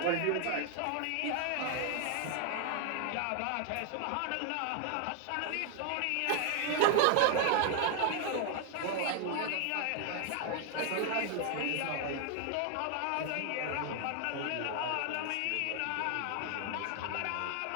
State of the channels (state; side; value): different; both; correlation 0.00